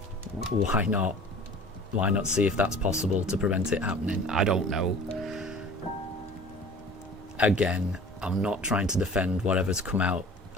why not see if that's possible to prevent it happening? I don't know. Again, I'm not trying to defend whatever's come out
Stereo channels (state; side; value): normal; both; correlation 0.45